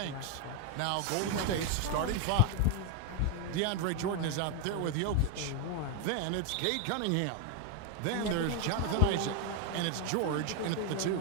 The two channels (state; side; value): different; both; correlation 0.01